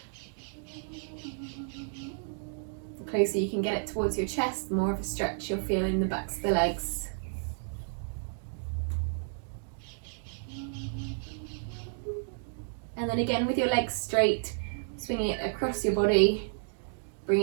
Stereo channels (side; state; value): left; silent; digital silence